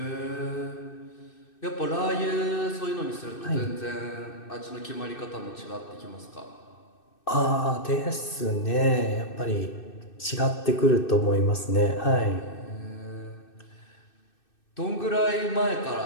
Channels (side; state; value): right; late; 2.6 ms